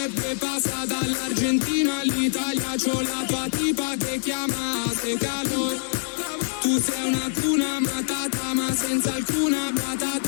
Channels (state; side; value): silent; right; digital silence